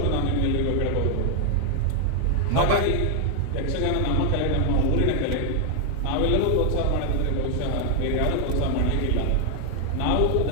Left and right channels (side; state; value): both; different; correlation 0.00